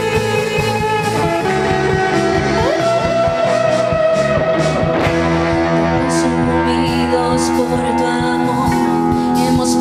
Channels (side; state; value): both; identical; correlation 1.00